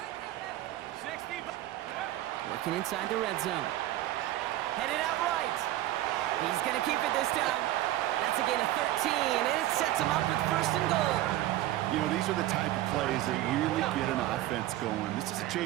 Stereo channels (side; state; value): left; quieter; 14.8 dB